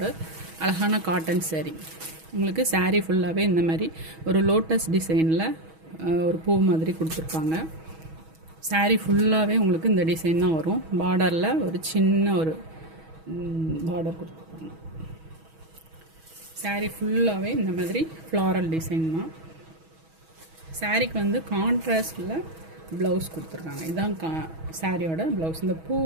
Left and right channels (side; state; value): left; late; 6.2 ms